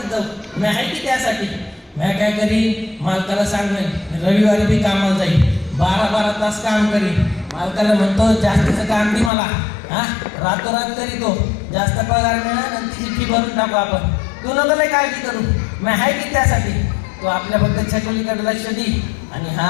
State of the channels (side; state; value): right; drops out; at 9.3 s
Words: जाऊ, मी आहे की त्यासाठी. मी काय करीन, मालकाला सांगेन रविवारी बी कामाला जाईल, 12-12 तास काम करीन. मालकाला म्हणतो जास्तीचं काम दे मला, हा रातोरात करीतो, जास्त पगार मिळेल आणि तिची फी भरून टाकू आपण. तू नको लय काळजी करू, मी आहे की त्यासाठी. तू आपल्याबद्दल छकुलीकडे लक्ष दे. आणि